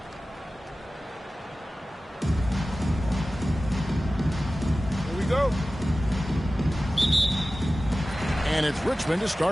Here we go. And it's Richmond to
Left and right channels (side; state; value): both; normal; correlation 0.96